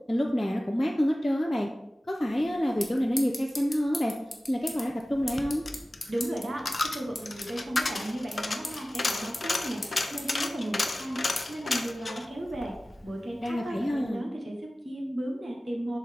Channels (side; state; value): both; normal; correlation 0.97